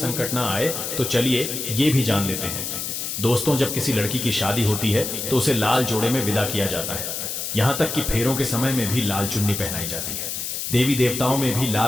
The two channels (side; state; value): left; noise; hiss, 4 dB below the sound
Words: ना आए। तो चलिए ये भी जान लेते हैं। दोस्तों, जब किसी लड़की की शादी होती है तो उसे लाल जोड़े में विदा किया जाता है। यहाँ तक कि फेरों के समय में भी लाल चुन्नी पहनाई जाती है। देवी देवताओं में भी